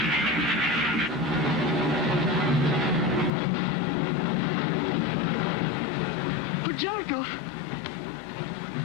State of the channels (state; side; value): drops out; right; at 3.3 s